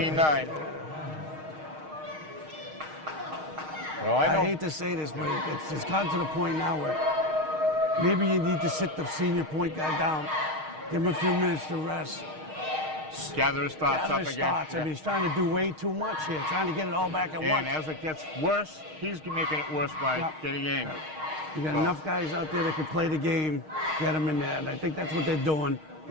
Well, I hate to say this, but it's gotten to the point now where maybe you need to sit the senior point guard down, give him a few minutes to rest. Gather his thoughts up again. I mean, he's trying to do way too much here, trying to get it all back at once. And as it gets worse, he's making it worse by getting angry. You got enough guys out there that can play the game, get them in there, and I think that's what they're doing.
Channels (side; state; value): left; late; 6.4 ms